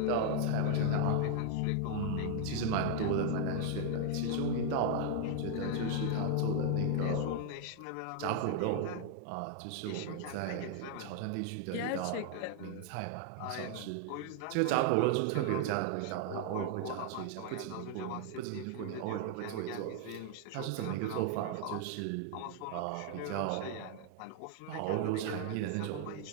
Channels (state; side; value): different; both; correlation 0.00